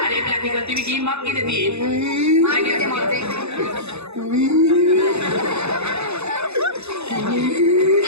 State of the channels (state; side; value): late; left; 0.80 ms